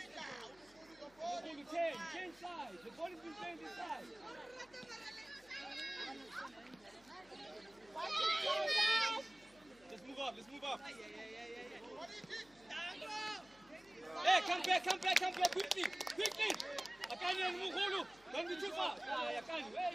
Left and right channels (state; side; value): noise; left; hum, 27 dB below the sound